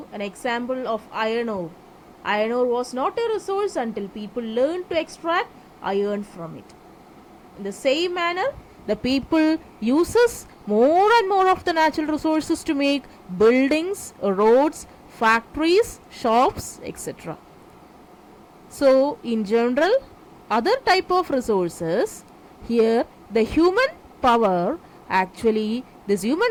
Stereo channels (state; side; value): identical; both; correlation 1.00